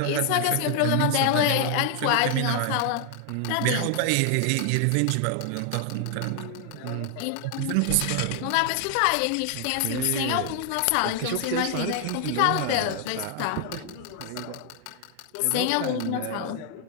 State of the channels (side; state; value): both; different; correlation 0.00